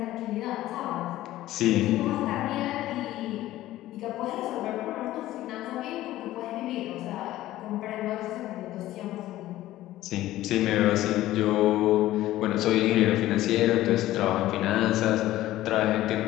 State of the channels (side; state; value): right; quieter; 15.1 dB